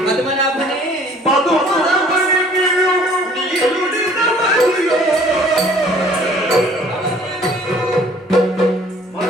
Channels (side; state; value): both; normal; correlation 0.54